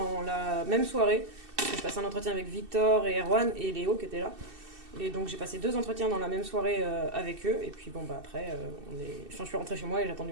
la même soirée. Je passais un entretien avec Victor et Erwan et Léo qui étaient là. Et donc, j'ai passé 2 entretiens dans la même soirée avec eux. Et puis, après, je suis rentrée chez moi et j'ai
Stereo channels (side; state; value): left; late; 2.6 ms